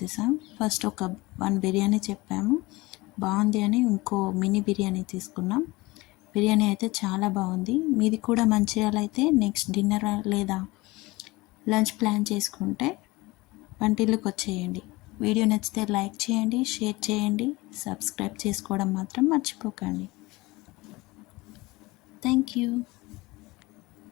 ఫస్ట్ ఒక 1 బిర్యానీ చెప్పాము, బాగుంది అని ఇంకో మినీ బిర్యానీ తీసుకున్నాం. బిర్యానీ అయితే చాలా బాగుంది. మీది కూడా మంచిర్యాల అయితే నెక్స్ట్ డిన్నర్ లేదా లంచ్ ప్లాన్ చేసుకుంటే వంటిల్లుకి వచ్చేయండి. వీడియో నచ్చితే లైక్ చేయండి, షేర్ చేయండి, సబ్స్క్రైబ్ చేసుకోవడం మాత్రం మర్చిపోకండి. Thank you.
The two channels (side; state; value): right; quieter; 21.9 dB